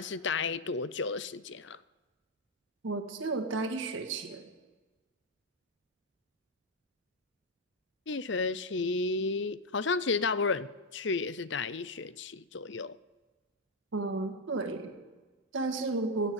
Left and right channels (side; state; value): both; normal; correlation 0.02